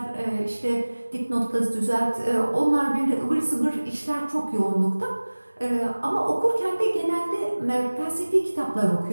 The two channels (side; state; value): both; inverted; correlation -1.00